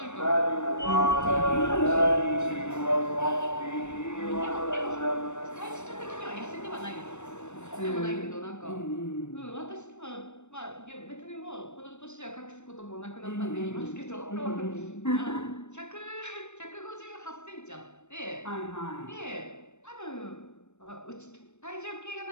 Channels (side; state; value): right; late; 0.83 ms